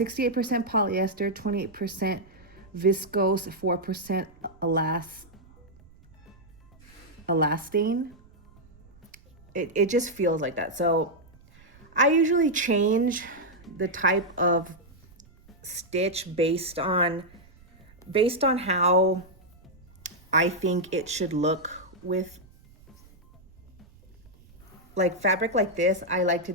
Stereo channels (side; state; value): right; noise; rumble, 26 dB below the sound